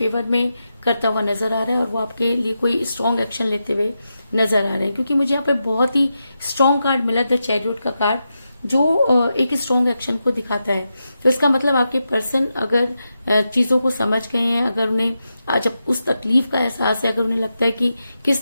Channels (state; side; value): inverted; both; correlation -0.88